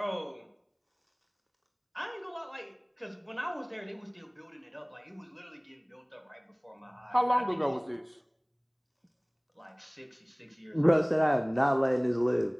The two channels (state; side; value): identical; both; correlation 1.00